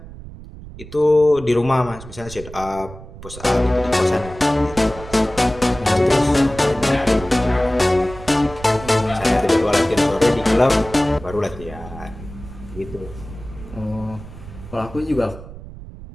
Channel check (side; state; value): right; noise; rumble, 15 dB below the sound